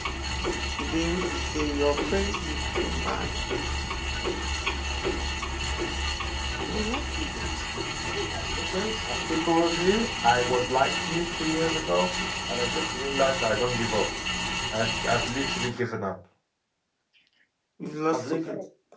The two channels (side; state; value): both; identical; correlation 1.00